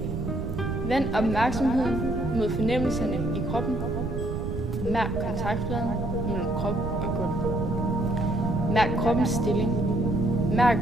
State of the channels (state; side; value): noise; right; rumble, 4 dB below the sound